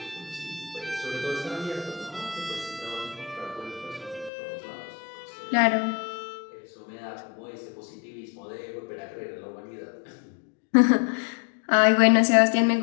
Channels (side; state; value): right; drops out; at 4.3 s